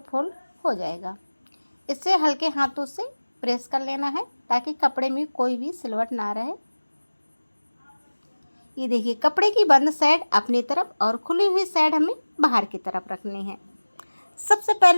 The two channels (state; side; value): inverted; both; correlation -1.00